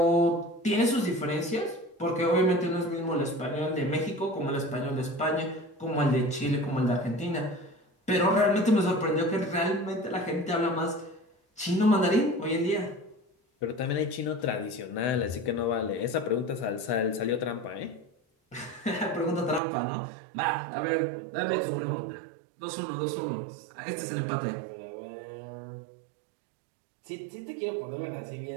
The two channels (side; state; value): left; drops out; at 19.6 s